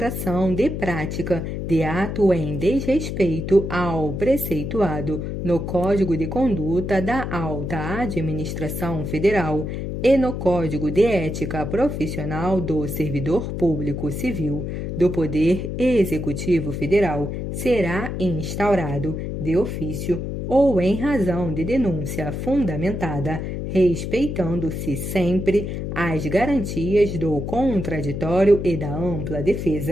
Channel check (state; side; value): noise; left; hum, 4 dB below the sound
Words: de prática de ato em desrespeito ao preceituado no Código de Conduta da Alta Administração Federal e no Código de Ética Profissional do Servidor Público Civil do Poder Executivo Federal será instaurado de ofício ou em razão de denúncia fundamentada, respeitando-se sempre as garantias do contraditório e da ampla